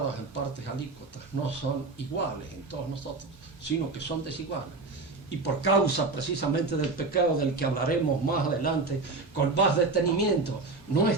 en partes alícuotas, no son iguales en todos nosotros, sino que son desiguales. Y por causa precisamente del pecado del que hablaremos más adelante con más detenimiento,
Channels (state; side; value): quieter; left; 3.7 dB